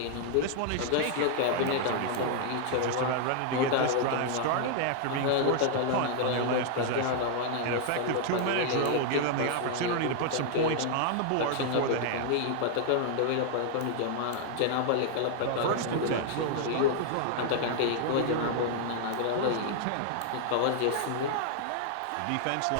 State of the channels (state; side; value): different; both; correlation 0.00